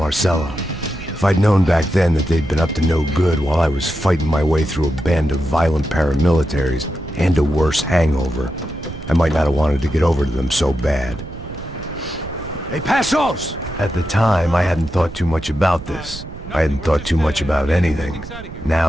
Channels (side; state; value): right; noise; rumble, 13 dB below the sound